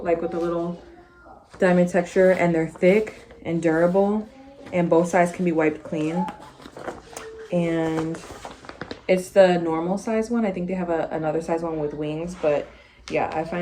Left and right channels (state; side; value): identical; both; correlation 1.00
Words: like with the little diamond texture, and they're thick and durable, and both sides can be wiped clean. And it's the normal size one. I think they have another size one with wings, but yeah, I